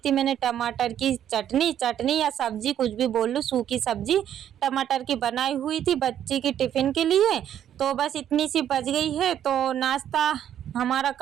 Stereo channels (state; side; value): quieter; left; 10.3 dB